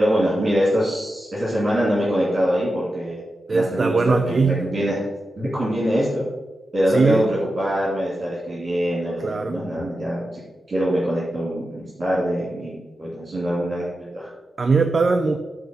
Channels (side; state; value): both; normal; correlation 0.90